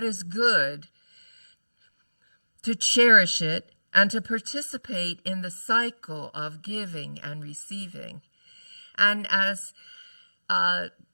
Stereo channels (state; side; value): inverted; both; correlation -1.00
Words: is good, to cherish it, and to participate in the cycle of giving and receiving. And as